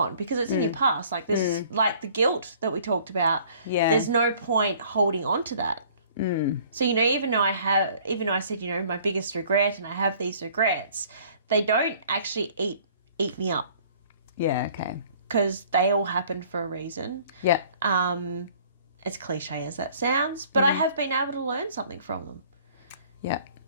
because it's in your past. Like this, like the guilt that we talked about. Yeah. There's no point holding on to that. So even though I said my biggest regret and I have these regrets, they don't actually eat me up. Yeah. Okay. Because they all happened for a reason. Yeah. As cliche as that sounds, but I have been able to learn something from them. Yeah.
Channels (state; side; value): inverted; both; correlation -0.54